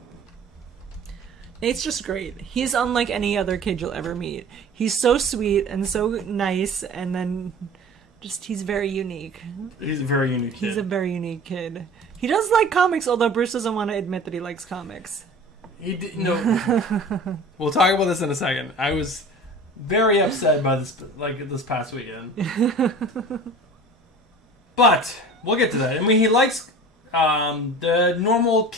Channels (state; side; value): normal; both; correlation 0.41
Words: Nate's just great. He's unlike any other kid you'll ever meet. He's so sweet and so nice, and then just he's very unique. He's a very unique kid. He's a very unique kid. He does like comics, although Bruce doesn't want to admit that he likes comics. He did, no. We'll talk about this in a second. I was very upset by this past weekend. But we'll get to that. I mean, he likes the normal